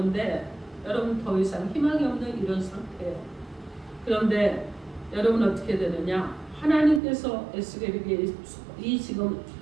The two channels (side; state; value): left; drops out; at 7.0 s